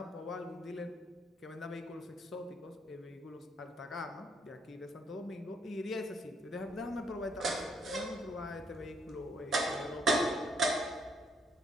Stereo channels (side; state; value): both; normal; correlation 0.69